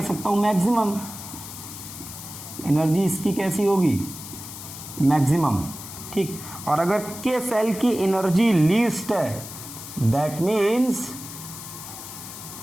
सकता हूं मैक्सिमम। एनर्जी इसकी कैसी होगी? मैक्सिमम, ठीक। और अगर के सेल की एनर्जी लीस्ट है, दैट मीन्स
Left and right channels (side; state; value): left; noise; hiss, 12 dB below the sound